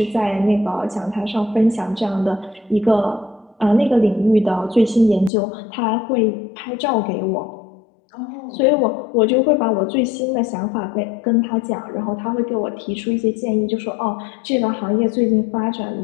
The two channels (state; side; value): drops out; right; at 5.3 s